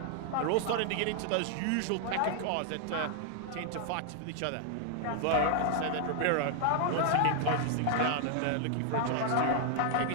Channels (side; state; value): both; different; correlation 0.00